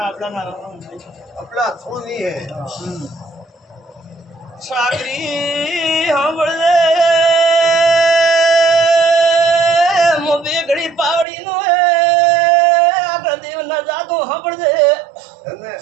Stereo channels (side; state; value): left; drops out; at 11.2 s